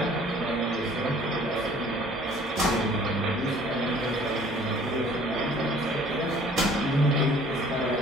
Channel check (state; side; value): normal; both; correlation 0.54